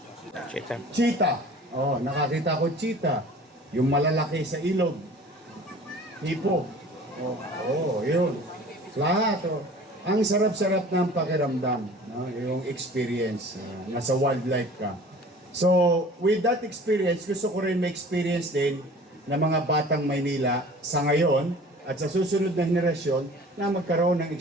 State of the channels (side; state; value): both; normal; correlation 0.45